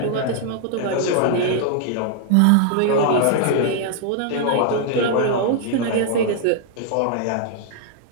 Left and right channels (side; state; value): both; different; correlation -0.01